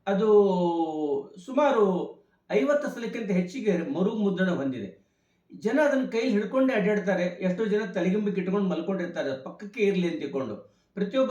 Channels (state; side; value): identical; both; correlation 1.00